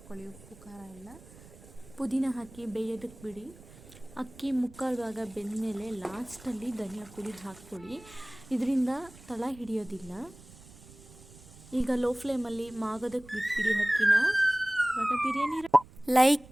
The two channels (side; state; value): right; noise; rumble, 21 dB below the sound